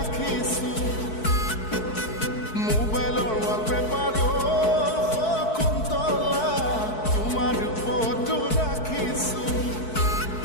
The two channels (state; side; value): late; right; 4.6 ms